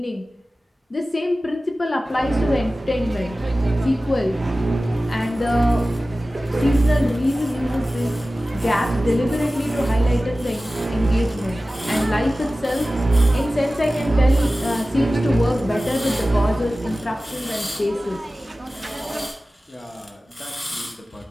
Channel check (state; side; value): normal; both; correlation 0.96